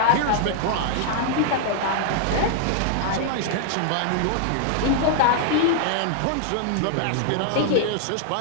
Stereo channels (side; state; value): both; different; correlation -0.01